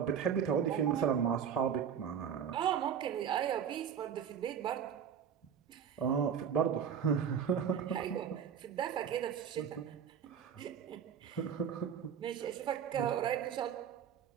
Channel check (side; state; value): left; quieter; 8.1 dB